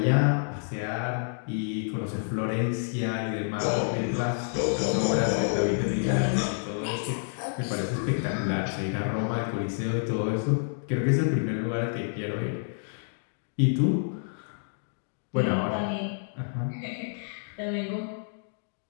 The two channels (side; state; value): right; silent; digital silence